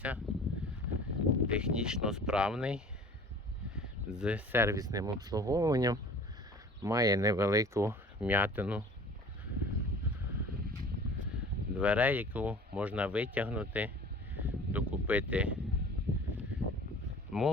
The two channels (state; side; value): normal; both; correlation 0.45